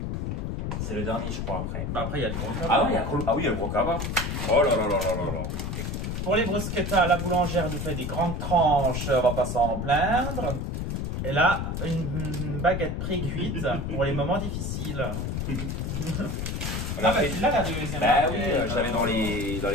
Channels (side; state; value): left; noise; rumble, 2 dB below the sound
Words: C'est le dernier, je crois, après. Bah après, il y a le gros cabas. Ah oui, il y a le gros cabas. Oh là là là là là là. Pour les bruschettas, la boulangère nous fait des grandes tranches, on va pas s'en plaindre. Et là, une baguette pré-cuite pour les moments difficiles. Là, la deuxième. Bah oui, je l'avais dans les